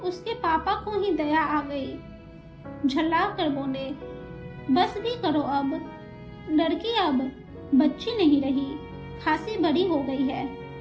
उसके पापा को ही दया आ गई। झल्ला कर बोले, बस भी करो अब, लड़की अब बच्ची नहीं रही, खासी बड़ी हो गई है।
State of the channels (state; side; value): identical; both; correlation 1.00